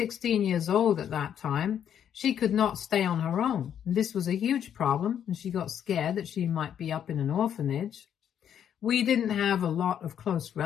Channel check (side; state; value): right; quieter; 9.2 dB